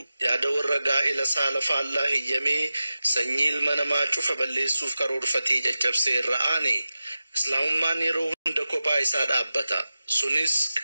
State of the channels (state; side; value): inverted; both; correlation -0.95